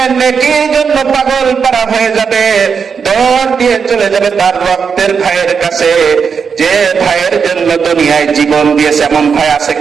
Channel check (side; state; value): left; quieter; 6.2 dB